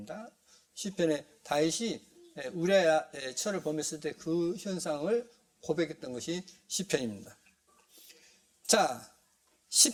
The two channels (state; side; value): identical; both; correlation 1.00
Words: 시편에 다윗이 우리아의 철을 범했을 때 그 현상을 고백했던 것이 시편입니다. 자,